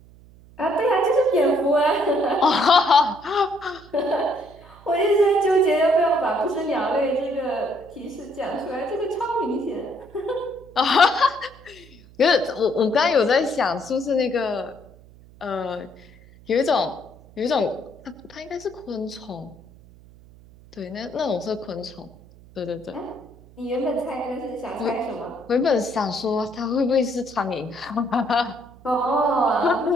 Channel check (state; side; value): noise; right; hum, 24 dB below the sound